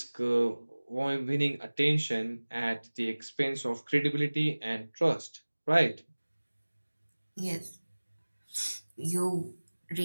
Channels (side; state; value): both; inverted; correlation -1.00